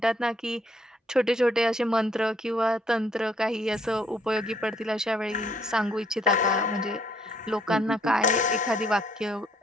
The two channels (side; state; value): both; normal; correlation 0.67